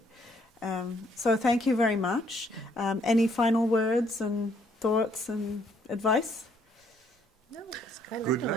So thank you very much. Any final words and thoughts and advice? No, I learned Good a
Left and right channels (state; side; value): normal; both; correlation 0.67